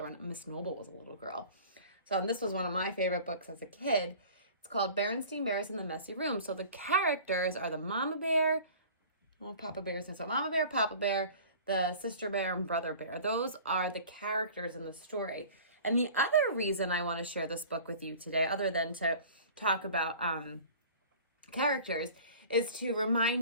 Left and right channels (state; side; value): inverted; both; correlation -0.44